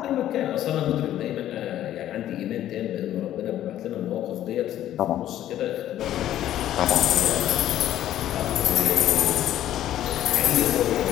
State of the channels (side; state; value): right; quieter; 12.4 dB